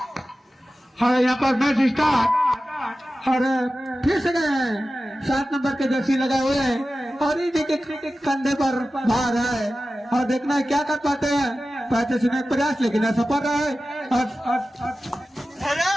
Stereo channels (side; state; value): both; normal; correlation 0.95